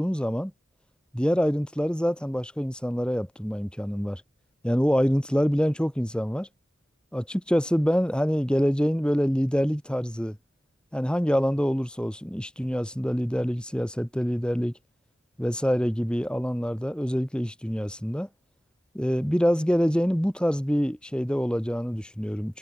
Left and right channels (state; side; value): normal; both; correlation 0.98